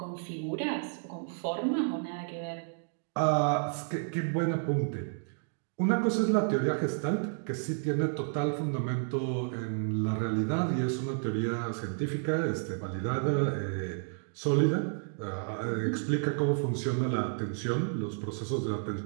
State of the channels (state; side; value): silent; left; digital silence